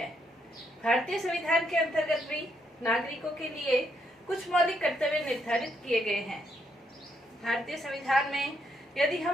भारतीय संविधान के अंतर्गत भी नागरिकों के लिए कुछ मौलिक कर्तव्य निर्धारित किए गए हैं। भारतीय संविधान में यदि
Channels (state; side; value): normal; both; correlation 0.76